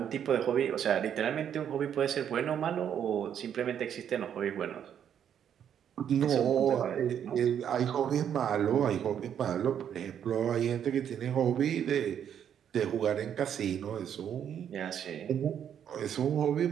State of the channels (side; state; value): left; quieter; 9.0 dB